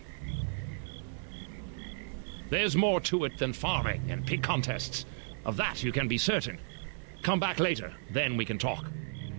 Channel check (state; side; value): silent; left; 55 dB below the other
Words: There's more to it than farming and pig contests. Of that you can be certain. Come back later, then we can talk.